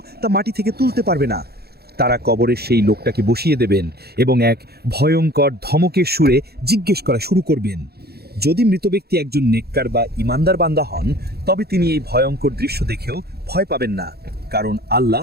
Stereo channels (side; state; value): left; late; 0.46 ms